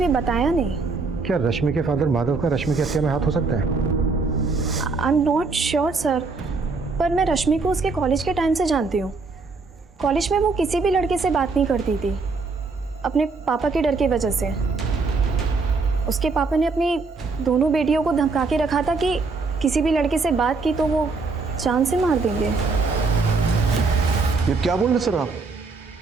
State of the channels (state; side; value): quieter; left; 4.1 dB